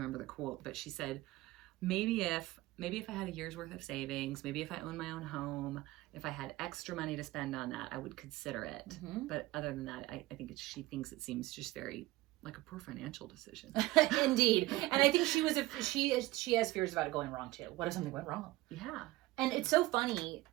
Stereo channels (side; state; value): left; quieter; 18.5 dB